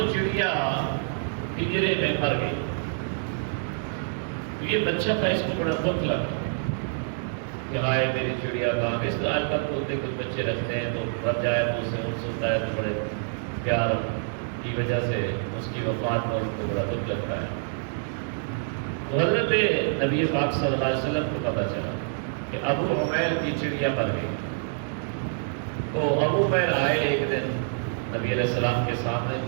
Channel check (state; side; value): silent; left; digital silence